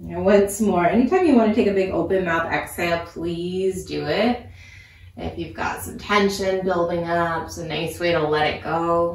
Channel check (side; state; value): both; identical; correlation 1.00